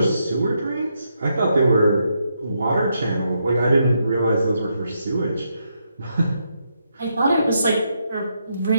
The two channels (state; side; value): inverted; both; correlation -0.80